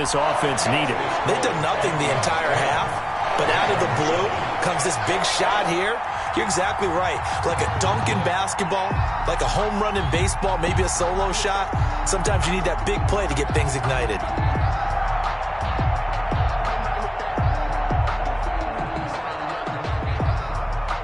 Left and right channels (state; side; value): identical; both; correlation 1.00